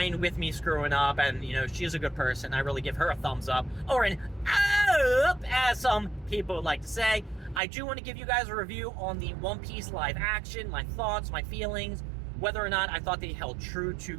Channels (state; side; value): drops out; left; at 7.6 s